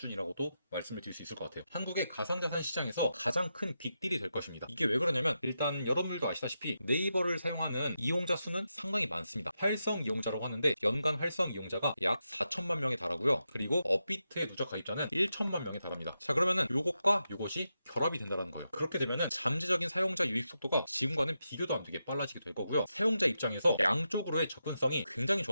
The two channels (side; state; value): both; inverted; correlation -0.87